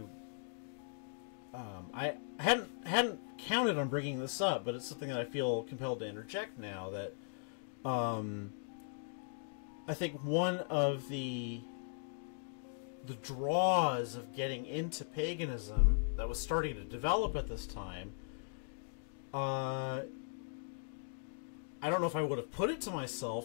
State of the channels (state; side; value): silent; right; digital silence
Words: hadn't counted on bringing this up, but it's something that I feel compelled to interject now. That I think one of the draws of getting into paganism that was starting to develop at this time, I don't know if I would have put it to